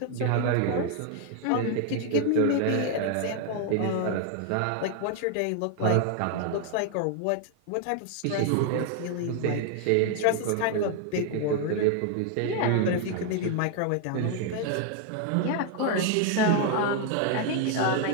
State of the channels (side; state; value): both; different; correlation 0.00